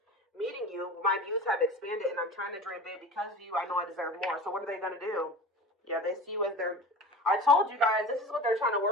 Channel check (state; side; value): normal; both; correlation 0.34